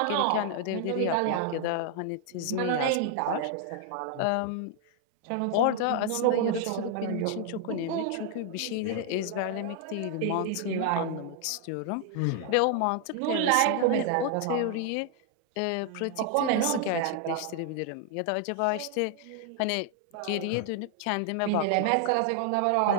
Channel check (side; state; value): both; different; correlation 0.00